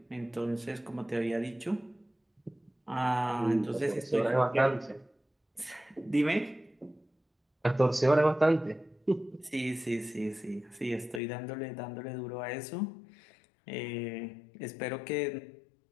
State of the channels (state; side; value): drops out; right; at 11.2 s